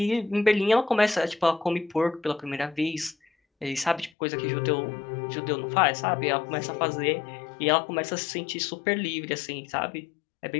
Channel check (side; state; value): right; drops out; at 4.1 s